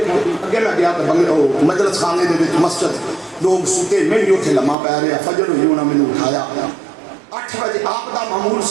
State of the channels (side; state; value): left; drops out; at 4.8 s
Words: اگے میں گیا تو بنگلے مجلس خانے دے وچ مسجد لوگ ستے میں بھی اتنے لمحہ پی رہے. فجر ہوئی انہوں نے مینوں اٹھایا 8 بجے. آپ دا معمول